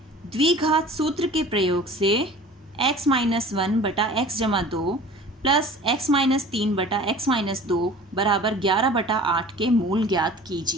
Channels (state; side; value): normal; both; correlation 0.43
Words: द्विघात सूत्र के प्रयोग से x - 1 बटा x जमा 2 प्लस x - 3 बटा x - 2 बराबर 11 बटा 8 के मूल ज्ञात